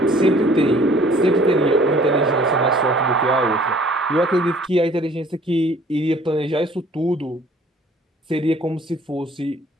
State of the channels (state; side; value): normal; both; correlation 0.55